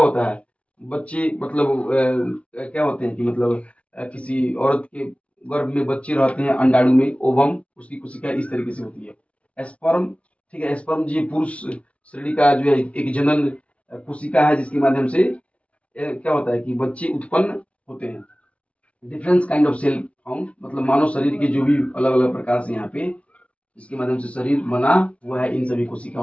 है, बच्चे मतलब क्या होते हैं कि मतलब किसी औरत के गर्भ में बच्चे रहते हैं अंडाणु में, ओवम, उसकी कोशिका इस तरीके से होती है। स्पर्म, ठीक है, स्पर्म जी पुरुष श्रेणी का जो है एक जनन कोशिका है, जिसके माध्यम से क्या होता है कि बच्चे उत्पन्न होते हैं। Difference kind of cell found, मतलब मानव शरीर के जो भी अलग अलग प्रकार से यहाँ पे इसके माध्यम से शरीर बना हुआ है, इन सभी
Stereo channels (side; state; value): right; late; 0.063 ms